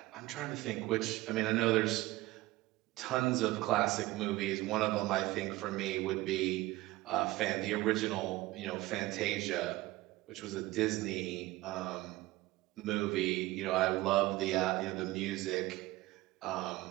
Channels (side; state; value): left; quieter; 18.5 dB